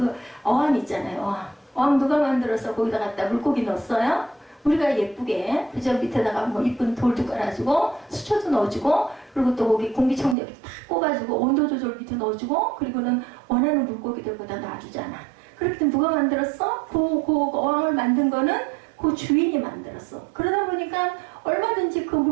어항 있잖아요. 어항 누가 만들어서 거기다 갖다 물고기 넣었어요? 우리가 예쁘게 그저 밑에다가 뭐 이쁜 돌도 깔아주고 수초도 넣어주고 그리고 또 거기 공기청정기 탁 꽂아주고 온도 조절 밑에 넣어주고 그리고는 원하는 물고기들 거기다 놔주잖아. 그렇기 때문에 누가 만들었어? 그 어항을 만든 거는 그 주인이 만들었어. 그러다 보니까 얼마든지 그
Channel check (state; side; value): drops out; left; at 10.4 s